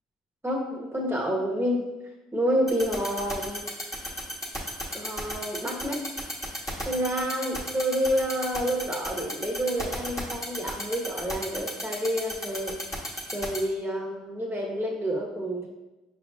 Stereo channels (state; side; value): normal; both; correlation 0.65